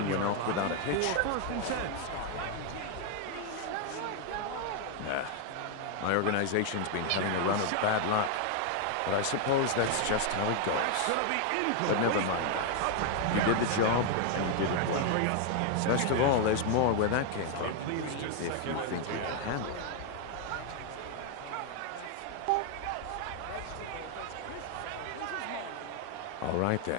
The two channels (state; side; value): different; both; correlation 0.00